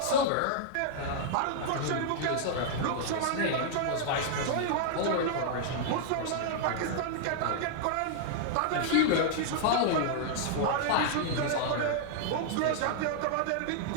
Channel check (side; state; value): both; different; correlation -0.01